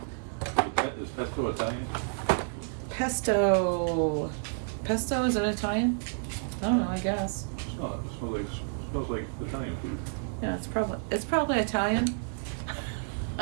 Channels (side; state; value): left; silent; digital silence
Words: Is pesto Italian? Pesto. Pesto, is it Italian? I don't know, I guess. Oh, it smells like Italian food. Yeah, it's probably Italian.